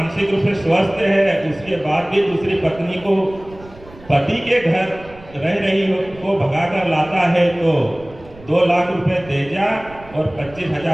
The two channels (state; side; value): noise; right; rumble, 21 dB below the sound